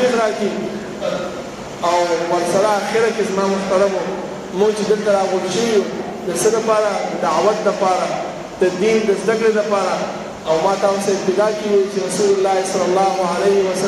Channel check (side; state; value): both; identical; correlation 1.00